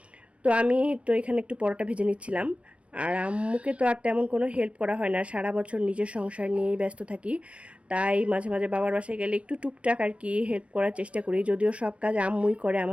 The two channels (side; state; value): left; late; 0.062 ms